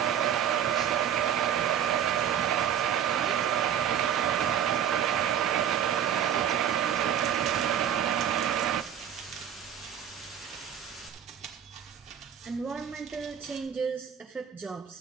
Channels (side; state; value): left; quieter; 9.3 dB